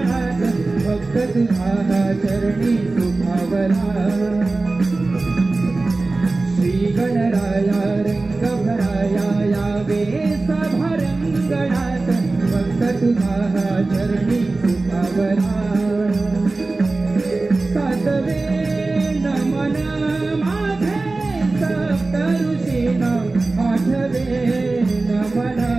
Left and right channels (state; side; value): quieter; left; 3.4 dB